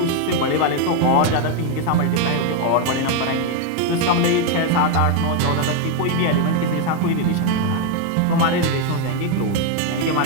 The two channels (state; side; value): different; both; correlation 0.01